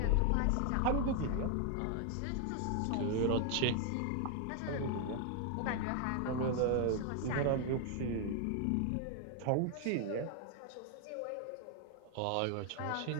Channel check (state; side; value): different; both; correlation 0.00